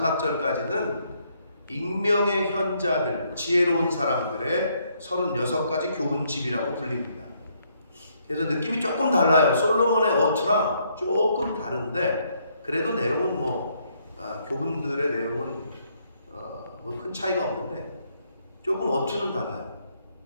절까지는 익명의 현자들, 지혜로운 사람들의 36가지 교훈집이라고 불립니다. 그래서 느낌이 조금 달라요. 솔로몬의 어투랑 조금 다른데 그래도 내용은 교훈들의 내용은 큰 차이가 없는데 조금 어투는 달라요.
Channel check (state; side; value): inverted; both; correlation -0.71